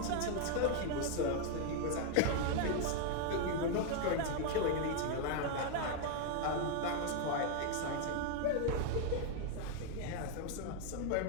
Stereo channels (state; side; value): different; both; correlation 0.00